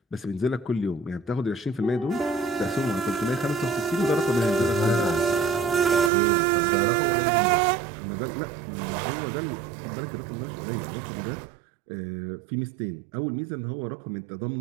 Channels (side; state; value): left; drops out; at 6.1 s